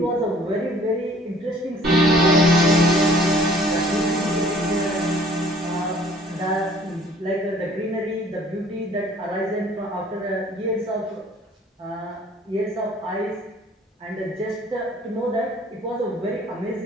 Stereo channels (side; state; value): both; normal; correlation 0.55